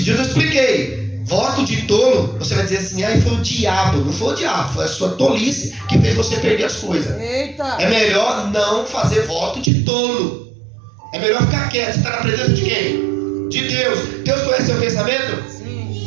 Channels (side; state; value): left; drops out; at 9.7 s